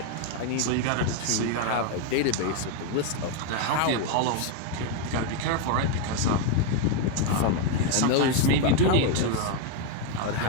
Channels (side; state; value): both; different; correlation 0.01